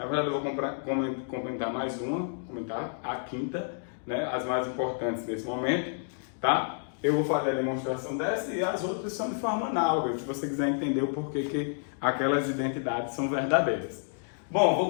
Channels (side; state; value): right; silent; digital silence